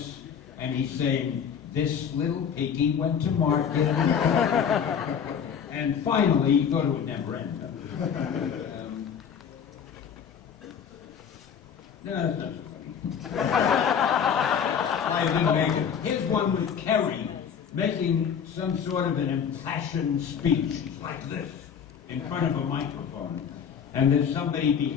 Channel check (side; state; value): right; quieter; 7.6 dB